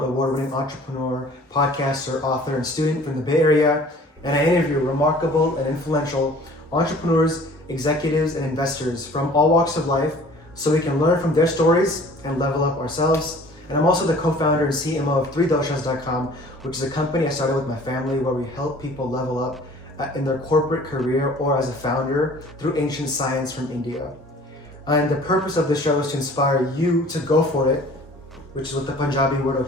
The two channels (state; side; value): normal; both; correlation 0.49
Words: award-winning entrepreneur, podcaster, author, and student from the Bay Area, and I interview remarkable and influential entrepreneurs, executives, and investors from all walks of life so we can learn from their stories and level up ourselves. And I'm also the co-founder and CMO of 3doshas.com, which is a company I started with my family where we help people level up in their corporate career or as a founder through ancient science from India. And the purpose of the show is to inspire you to go for it, which is what the Punjabi word